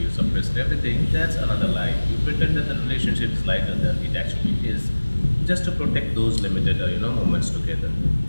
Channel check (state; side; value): inverted; both; correlation -1.00